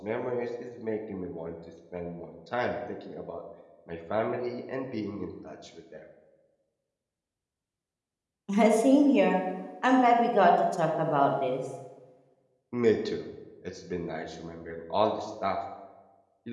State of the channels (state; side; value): identical; both; correlation 1.00